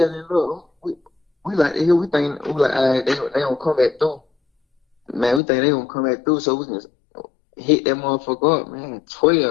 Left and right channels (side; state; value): right; drops out; at 5.4 s